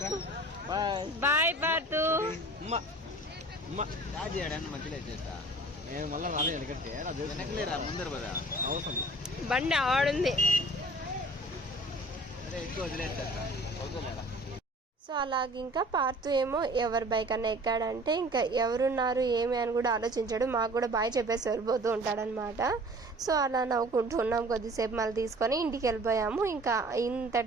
బాయ్ పార్తు. నేను మళ్ళీ రాలేదు ఎందుకంటే వెనకలేరా ముందరు కదా అవసరం బండి ఆడుంది. ఎక్కువ వదిలేస్తా. సో అలాగే ఇంకా పార్తు ఏమో ఎవరి బైక్ అన్న ఎక్కాడంటే ఇంకా ఎవరున్నారు ఏమి అని కూడా ఆలోచించాడు. మాకు కూడా బాయ్ చెప్పేసి వెళ్ళిపోతూ ఉంటాడనమాట. సో అలా నవ్వుకుంటూ ఉన్నాం కొద్దిసేపు, మళ్ళీ తీసుకొని ఇంటికి వెళ్ళిపోయాము. ఇంకా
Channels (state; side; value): normal; both; correlation 0.47